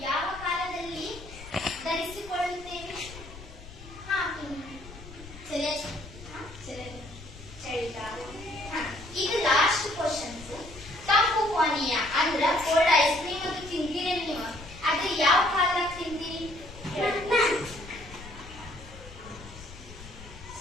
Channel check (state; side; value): noise; left; rumble, 16 dB below the sound